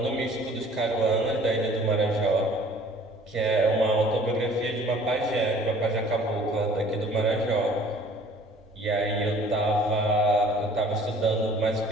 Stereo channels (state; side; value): normal; both; correlation 0.52